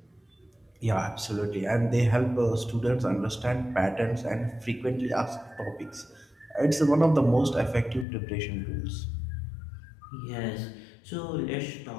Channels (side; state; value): right; drops out; at 8.1 s